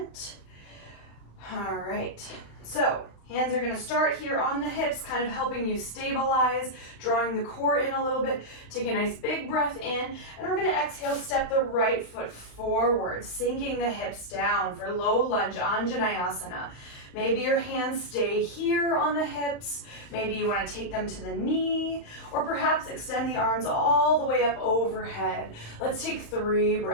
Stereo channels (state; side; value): late; right; 35 ms